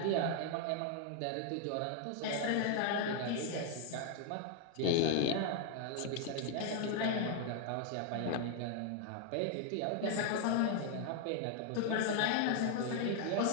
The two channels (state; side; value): different; both; correlation 0.00